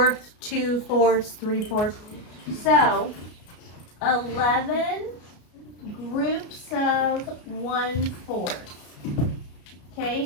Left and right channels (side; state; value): right; late; 33 ms